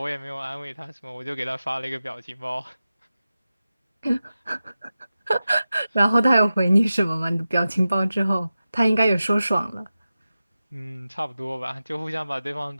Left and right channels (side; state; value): both; inverted; correlation -0.94